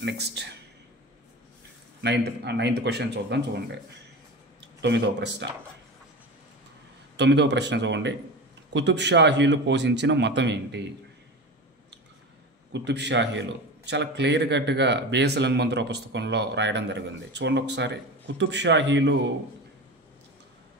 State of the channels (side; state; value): both; normal; correlation 0.28